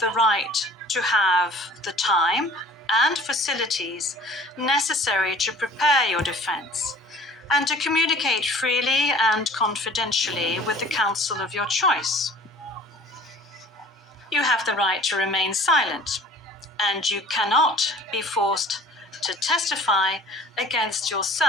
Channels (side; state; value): both; normal; correlation 0.49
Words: right to have the time and facilities necessary to prepare your defense and to communicate freely and confidentially with the counsel of your choice. You have the right to remain silent, and you cannot be forced to testify against